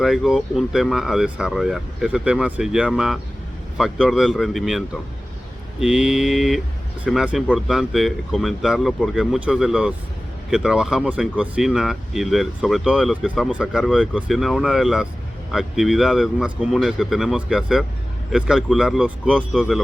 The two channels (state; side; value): normal; both; correlation 0.97